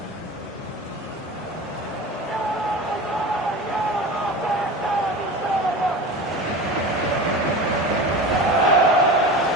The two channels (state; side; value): normal; both; correlation 0.31